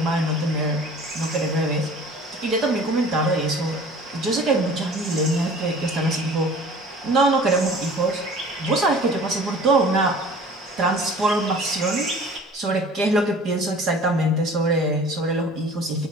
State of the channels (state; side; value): normal; both; correlation 0.46